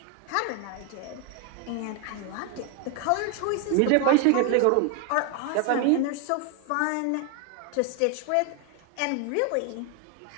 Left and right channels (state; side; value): different; both; correlation 0.01